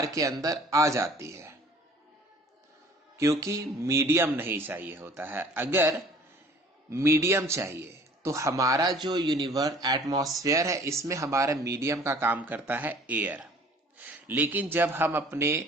के अंदर आ जाती है क्योंकि मीडियम नहीं चाहिए होता है। अगर मीडियम चाहिए। तो हमारा जो यूनिवर्स एटमॉस्फेयर है, इसमें हमारा मीडियम का काम करता है एयर। लेकिन जब हम अपने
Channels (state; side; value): normal; both; correlation 0.51